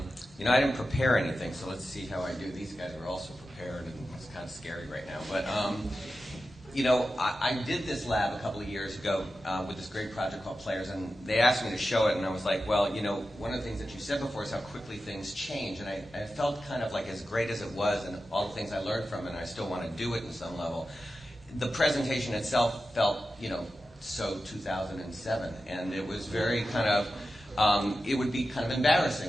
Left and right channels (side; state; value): both; normal; correlation 0.92